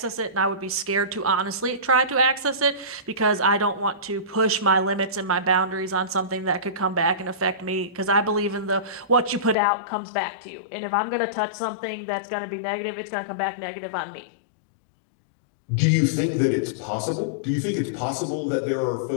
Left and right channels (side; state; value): right; drops out; at 9.6 s